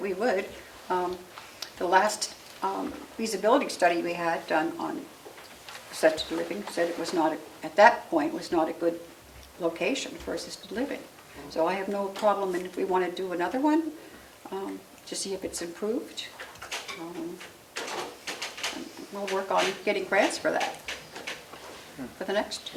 we would. The last feasibility study we had done on assisted living said it was not, at that point, was not a good location for assisted living. So I have no problem, and if we want to do another one, to see if it's improved, we'll work on getting grants for that, for the next.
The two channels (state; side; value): identical; both; correlation 1.00